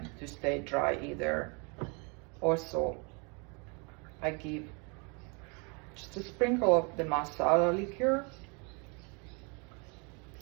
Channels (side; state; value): left; quieter; 32.9 dB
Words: to stay dry either. Also, I give just a sprinkle of the masala liqueur